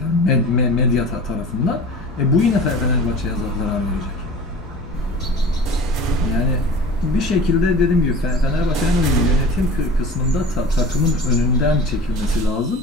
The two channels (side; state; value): both; normal; correlation 0.38